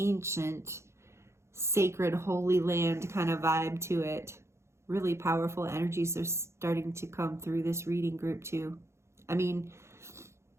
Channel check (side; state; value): left; late; 0.13 ms